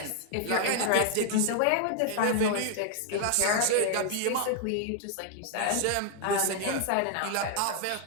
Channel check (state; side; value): different; both; correlation 0.00